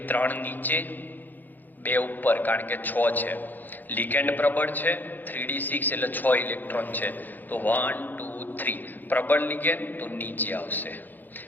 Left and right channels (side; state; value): right; late; 0.086 ms